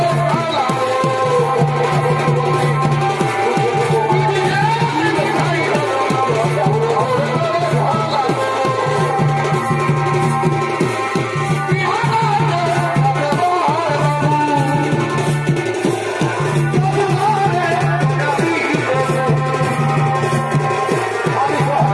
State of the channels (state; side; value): identical; both; correlation 1.00